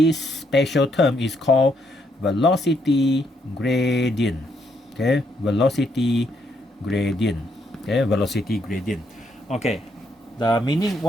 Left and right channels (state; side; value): normal; both; correlation 0.74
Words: special term is called velocity gradient. Okay, velocity gradient. Okay, velocity gradient. Okay, the meaning,